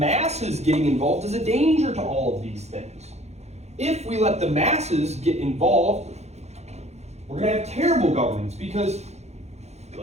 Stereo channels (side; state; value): left; late; 0.32 ms